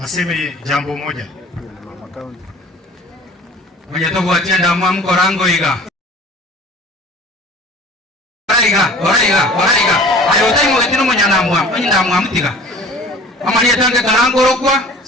aseme jambo moja. Mwenye togo atienda mwamko rango iga. Oraiga. Ayotai mwetino mwenye na mtiga. Amani etange karango rokwa,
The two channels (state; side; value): normal; both; correlation 0.45